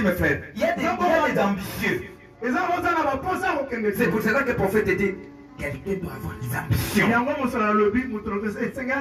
mes frères, il y a des ambitieux. C'est pour cela que le prophète dit, quelqu'un doit avoir des ambitions.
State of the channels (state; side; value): identical; both; correlation 1.00